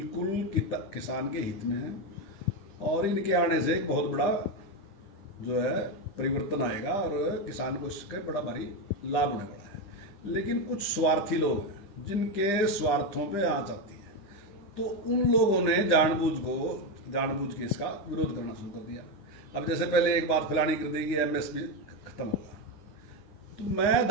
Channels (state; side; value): late; right; 10 ms